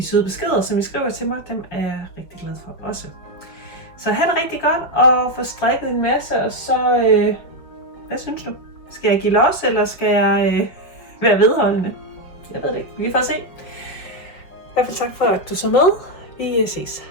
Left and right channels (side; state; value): right; late; 5.2 ms